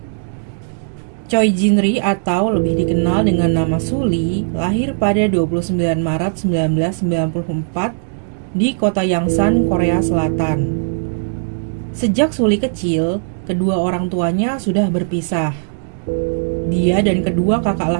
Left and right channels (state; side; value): silent; left; digital silence